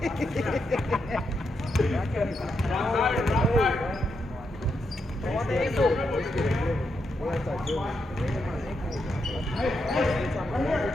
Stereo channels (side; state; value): both; normal; correlation 0.82